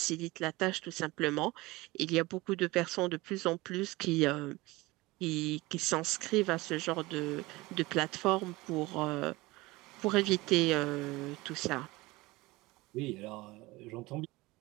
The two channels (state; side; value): quieter; left; 21.3 dB